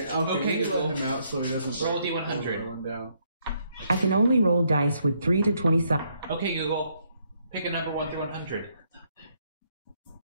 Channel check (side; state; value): both; inverted; correlation -0.72